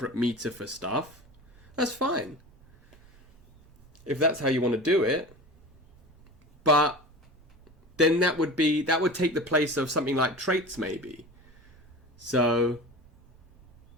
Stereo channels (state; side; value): noise; right; rumble, 27 dB below the sound